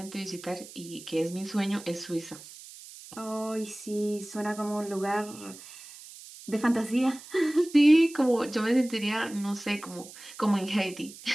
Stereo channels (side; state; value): right; noise; hiss, 17 dB below the sound